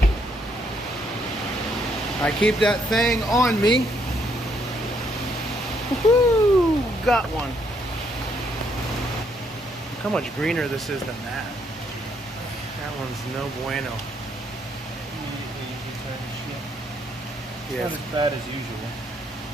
I keep that thing on me. Woohoo! Got one. Look how much greener this is than that. That one's no bueno. Yeah. It's not as bad as usual.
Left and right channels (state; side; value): normal; both; correlation 0.72